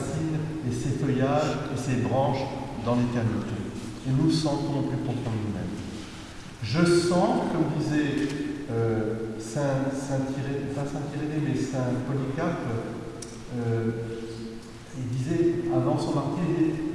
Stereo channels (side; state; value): both; identical; correlation 1.00